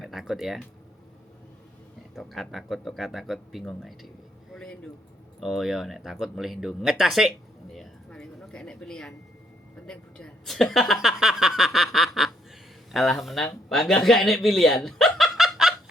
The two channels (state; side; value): normal; both; correlation 0.71